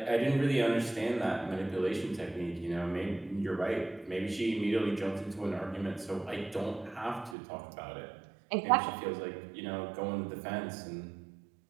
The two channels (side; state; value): left; drops out; at 7.4 s